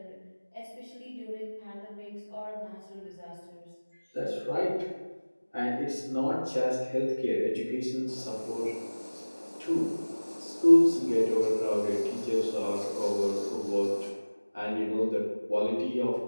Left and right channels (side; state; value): both; inverted; correlation -1.00